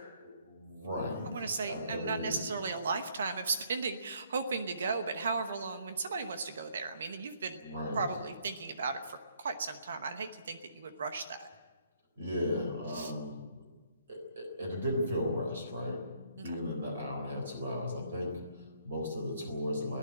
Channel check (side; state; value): both; inverted; correlation -0.67